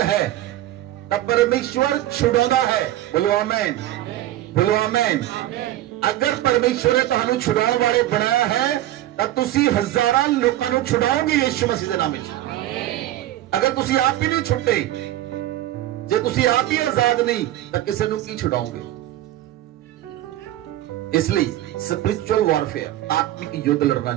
ਹੈ ਤਾਂ ਪਰਮੇਸ਼ਵਰ ਛੁਡਾਉਂਦਾ ਹੈ। ਬੋਲੋ ਆਮੇਨ, ਬੋਲੋ ਆਮੇਨ। ਅਗਰ ਪਰਮੇਸ਼ਵਰ ਨੇ ਤੁਹਾਨੂੰ ਛੁਡਾਉਣ ਵਾਲੇ ਬਣਾਇਆ ਹੈ ਤਾਂ ਤੁਸੀਂ ਹਜ਼ਾਰਾਂ ਲੋਕਾਂ ਨੂੰ ਛੁਡਾਓਗੇ ਯਿਸੂ ਮਸੀਹ ਦੇ ਨਾਮ ਵਿੱਚ। ਅਗਰ ਤੁਸੀਂ ਆਪ ਹੀ ਨਹੀਂ ਛੁੱਟੇ, ਜੇ ਤੁਸੀਂ ਆਪ ਹੀ ਆਜ਼ਾਦ ਨਹੀਂ ਤਾਂ ਕਿਸੇ ਨੂੰ ਕੀ ਛੁਡਾਓਗੇ। ਇਸ ਲਈ ਸਪਿਰਿਚੁਅਲ ਵਾਰਫੇਅਰ ਆਤਮਿਕ ਯੁੱਧ ਲੜਨਾ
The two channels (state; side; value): quieter; left; 14.2 dB